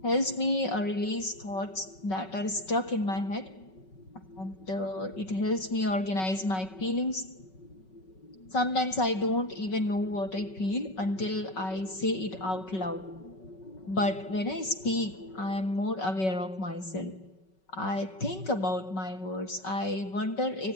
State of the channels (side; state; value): right; late; 5.3 ms